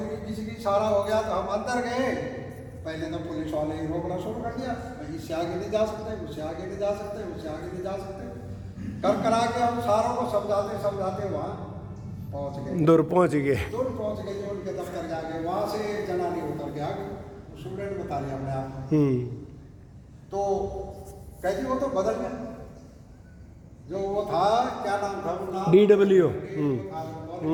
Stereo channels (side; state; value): both; identical; correlation 1.00